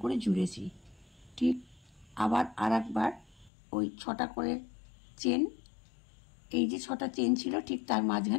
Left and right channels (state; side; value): drops out; right; at 3.5 s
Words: করে জুড়েছি। ঠিক আবার আর একবার ওই 6টা করে চেন, এই যে 6টা চেন ছিল ঠিক তার